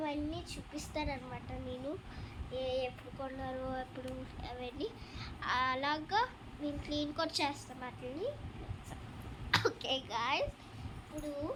చూపిస్తారనమాట. నేను ఎప్పుడు కొన్నారో ఎప్పుడు అవన్నీ అలాగా నేను క్లీన్ కూడా చేస్తాను వాటిని. ఓకే గాయ్స్, ఇప్పుడు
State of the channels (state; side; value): identical; both; correlation 1.00